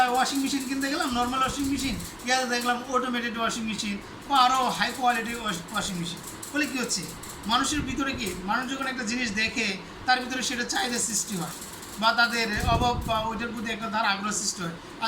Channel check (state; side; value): identical; both; correlation 1.00